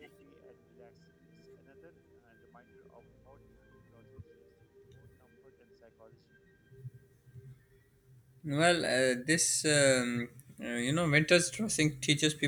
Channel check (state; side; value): identical; both; correlation 1.00